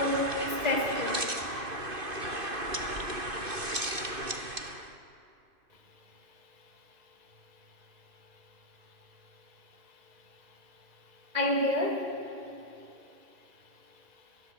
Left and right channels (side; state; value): left; late; 2.5 ms